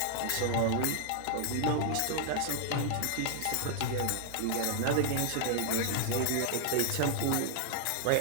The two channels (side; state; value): both; different; correlation 0.00